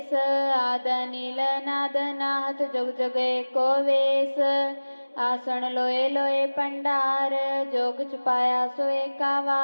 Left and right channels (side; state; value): both; inverted; correlation -1.00